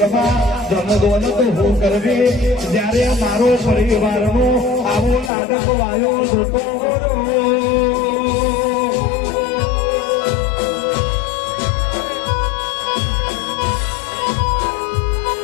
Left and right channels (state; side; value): drops out; right; at 5.3 s